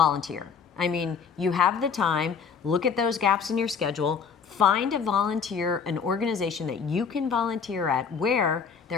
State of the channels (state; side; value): quieter; right; 6.2 dB